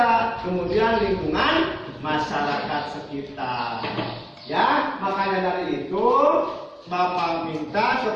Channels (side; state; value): both; identical; correlation 1.00